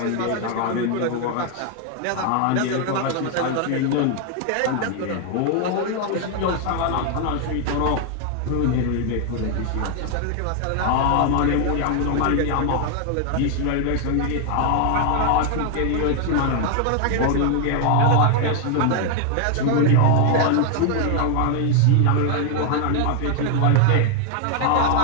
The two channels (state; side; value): different; both; correlation 0.00